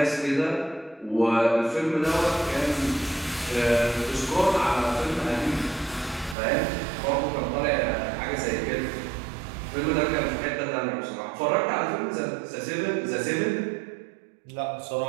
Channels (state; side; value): drops out; left; at 6.4 s